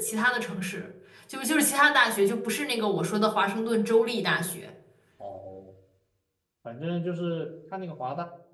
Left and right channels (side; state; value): both; identical; correlation 1.00